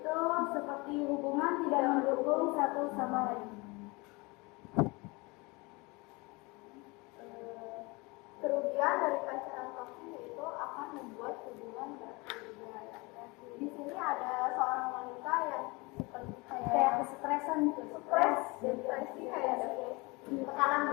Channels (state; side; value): quieter; right; 26.0 dB